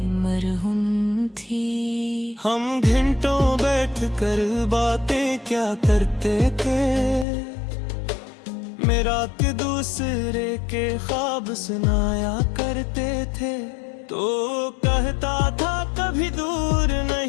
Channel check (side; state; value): right; drops out; at 7.2 s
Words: मरहूम थी। हम घंटों बैठकर बातें क्या करते थे, मेरा के दूसरे के ख्वाब सुनाया करते थे। तो कहता था कभी दूर